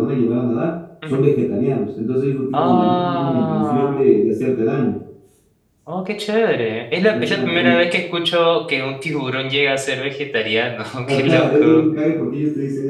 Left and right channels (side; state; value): both; identical; correlation 1.00